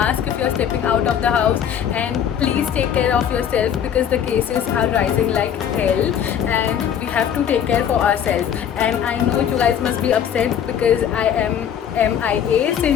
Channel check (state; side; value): quieter; right; 8.9 dB